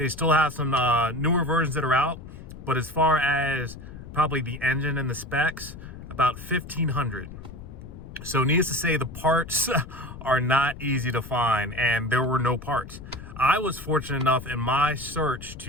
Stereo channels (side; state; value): left; noise; rumble, 14 dB below the sound